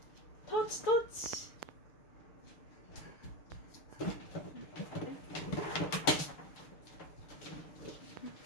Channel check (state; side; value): late; right; 6.8 ms